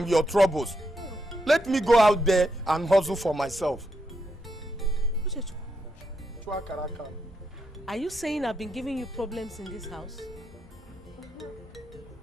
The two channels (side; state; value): both; normal; correlation 0.81